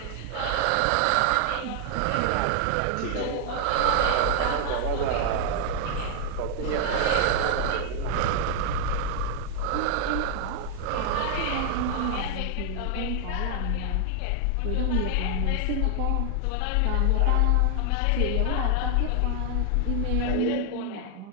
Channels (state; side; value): different; both; correlation 0.00